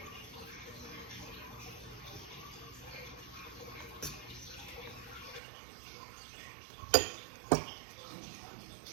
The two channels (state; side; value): drops out; left; at 5.4 s